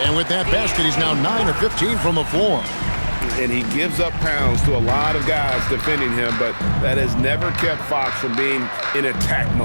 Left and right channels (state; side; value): inverted; both; correlation -1.00